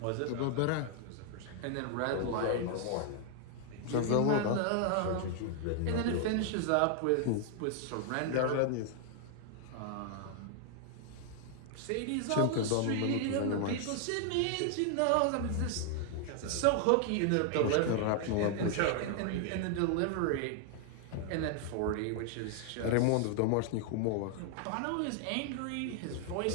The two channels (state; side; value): different; both; correlation 0.00